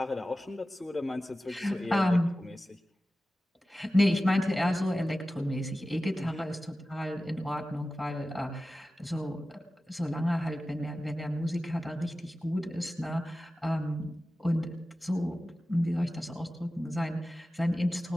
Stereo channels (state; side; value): normal; both; correlation 0.95